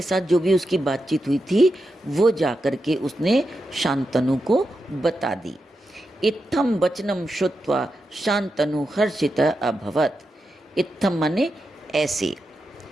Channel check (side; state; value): both; normal; correlation 0.88